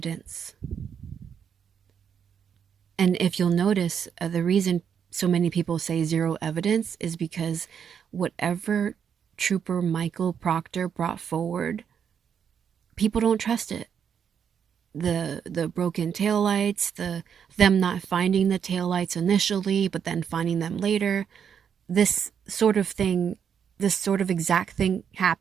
And if you'll notice, the reason so many people say zero evidence is because whatever Trooper Michael Proctor brought forward, people don't trust it. The broken taillights, them not finding the taillights initially, but then finding them later. This sort of exact thing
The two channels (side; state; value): left; quieter; 7.7 dB